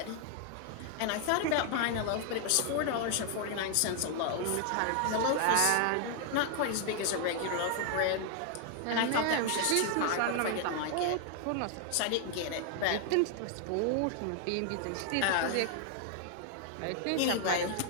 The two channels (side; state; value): both; different; correlation 0.00